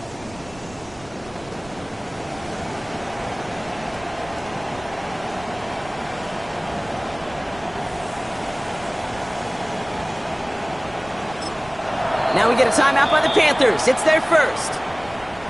Now we get a timeout by the Panthers. It's their first.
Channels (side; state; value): right; noise; rumble, 20 dB below the sound